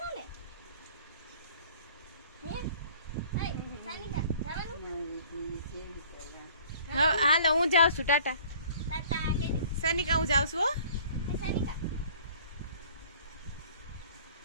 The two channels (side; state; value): both; inverted; correlation -0.51